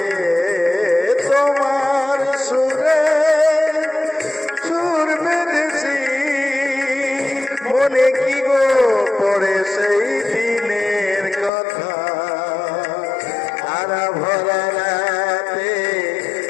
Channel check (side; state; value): right; drops out; at 11.5 s